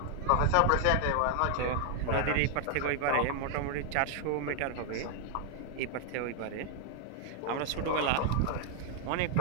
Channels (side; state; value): both; different; correlation 0.00